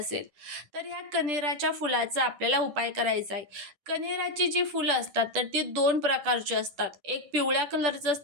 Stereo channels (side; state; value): left; late; 10 ms